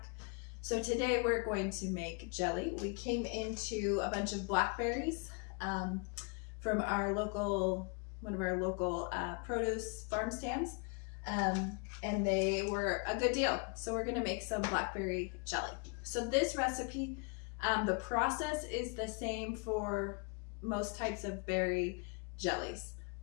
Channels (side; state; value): right; quieter; 34.7 dB